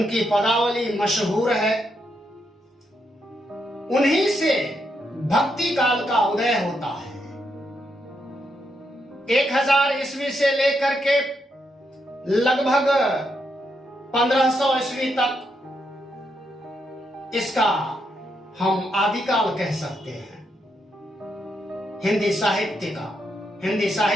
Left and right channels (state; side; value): normal; both; correlation 0.80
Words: पदावली मशहूर है। उन्हीं से भक्ति काल का उदय होता है। 1000 ईस्वी से लेकर के लगभग 1500 ईस्वी तक इसका हम आदिकाल कह सकते हैं, हिंदी साहित्य का, हिंदी